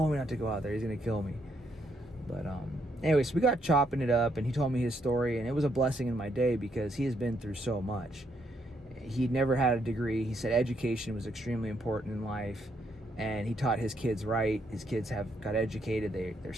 me not to go out there. He's gonna kill me." But anyways, we got chopping it up, and he told me his story, and it was a blessing in my day because he has been through so much. He'd never had a degree. He said education was extremely important in life, and he taught his kids right. His kids got educated. They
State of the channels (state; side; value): normal; both; correlation 0.75